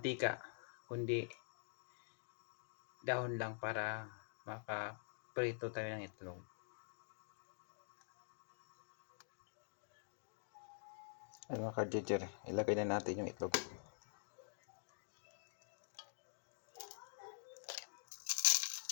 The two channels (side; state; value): right; silent; digital silence